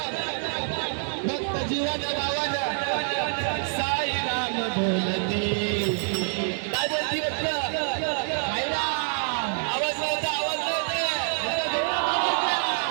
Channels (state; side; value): silent; left; digital silence